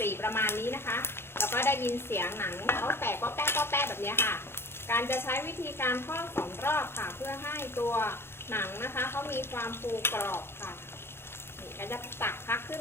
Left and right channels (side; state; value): right; late; 0.11 ms